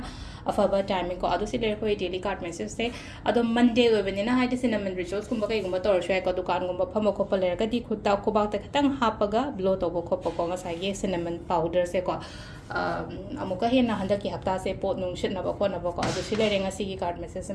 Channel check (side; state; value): both; identical; correlation 1.00